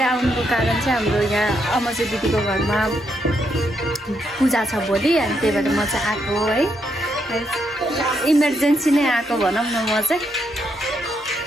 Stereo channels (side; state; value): both; normal; correlation 0.78